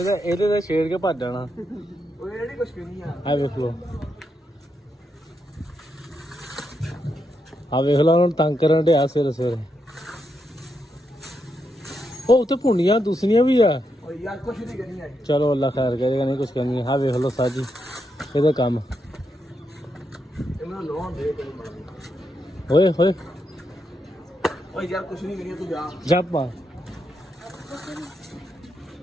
ਤੇ ਛੇੜ ਕੇ ਭੱਜ ਜਾਣਾ ਉਹ ਜਿਹੜੀ ਕੁਛ ਨਹੀਂ ਆ ਆ ਵੇਖ ਲਓ ਆ ਵੇਖ ਲਓ ਹੁਣ ਤੰਗ ਕਰਨ ਡਿਆ ਸਵੇਰੇ ਉਹ ਉੱਥੇ ਭੁੰਡੀਆਂ ਦੂਸਰੀਆਂ ਵੀ ਆ ਓ ਯਾਰ ਕੁਛ ਨਹੀਂ ਕਰਨੀ ਆ ਚਲੋ ਅੱਲਾ ਖੈਰ ਕਰੇ ਕਹਿੰਦੇ ਕੁਛ ਕਰਨੀ ਆ ਵੇਖ ਲਓ ਸਾਜੀ ਇਹਦਾ ਕੰਮ ਇਹ ਮੈਨੂੰ ਲੋਨ ਦੇ ਕੋਈ ਓਏ ਓ ਯਾਰ ਕੁਛ ਨਹੀਂ ਕਰਨੀ ਤੂੰ ਜਾ ਜਾਪਾ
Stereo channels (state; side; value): normal; both; correlation 0.82